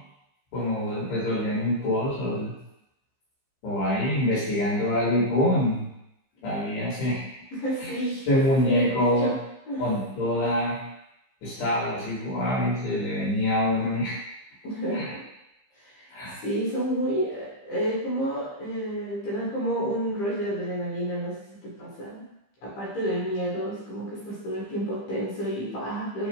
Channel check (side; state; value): right; late; 15 ms